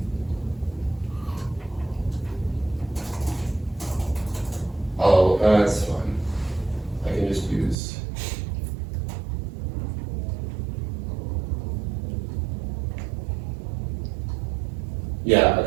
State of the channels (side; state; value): left; drops out; at 7.8 s